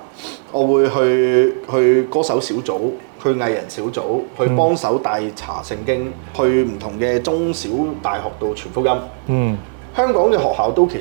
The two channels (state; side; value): silent; left; 67 dB below the other